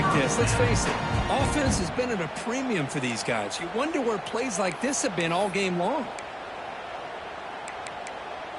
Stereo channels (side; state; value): both; identical; correlation 1.00